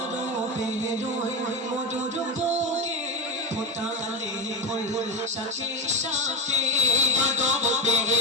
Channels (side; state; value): both; normal; correlation 0.14